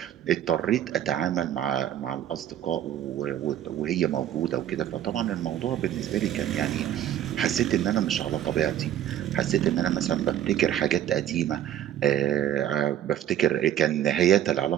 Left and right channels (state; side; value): quieter; left; 11.2 dB